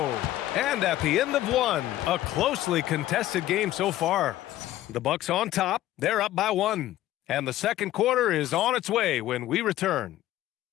And at the end of one, a closely contested game so far. The Bucks on top. They're up by 1. And the second quarter is on its way when we return.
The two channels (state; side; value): quieter; right; 14.3 dB